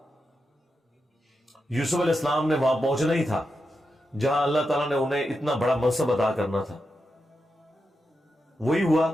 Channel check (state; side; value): normal; both; correlation 0.87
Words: یوسف علیہ السلام نے وہاں پہنچنا ہی تھا جہاں اللہ تعالیٰ نے انہیں اتنا بڑا منصب عطا کرنا تھا. وہی ہوا.